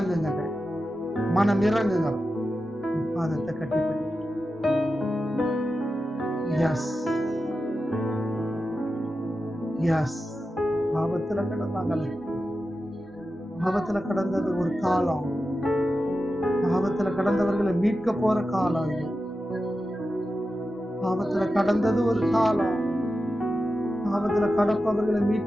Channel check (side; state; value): both; normal; correlation 0.91